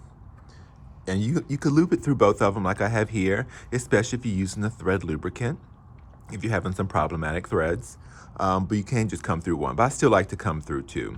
and you could loop it through both of them like I have here, especially if you're using a thread lubricant, if you're having some problematic threads, but you can't just come through one. But I still like to come through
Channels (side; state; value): both; identical; correlation 1.00